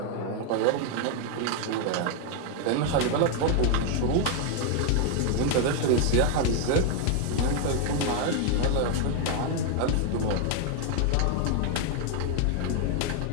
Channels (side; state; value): both; different; correlation 0.01